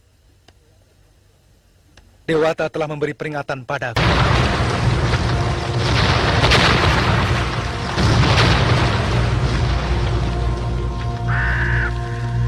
Dewata telah memberi peringatan padaku.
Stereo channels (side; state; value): both; identical; correlation 1.00